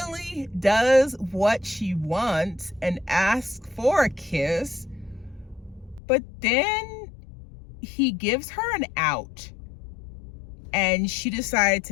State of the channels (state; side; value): drops out; right; at 6.0 s